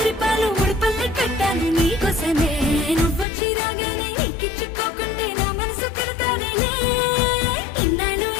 ముడిపల్లి కట్టాలి నీకోసమే నువ్వొచ్చి రాగానే నీకిచ్చుకోకుంటే నా మనసు తిడతాదిలే ఇన్నాళ్ళు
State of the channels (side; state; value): right; drops out; at 3.2 s